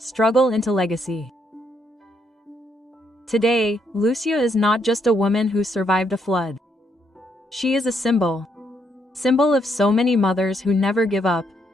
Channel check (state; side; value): normal; both; correlation 0.75